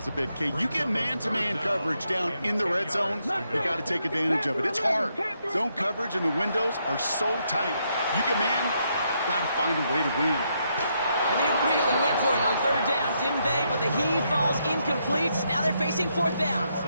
a bit. Kay, you get man-to-man coverage down in the red zone, you got to take advantage of it. It's hard. Zone coverage and the windows are so tight. You get man, got to find a way to win. And they really went for it on 3rd down, didn't they? But the heave falls incomplete. Now they're facing 4th down.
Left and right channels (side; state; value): both; inverted; correlation -0.77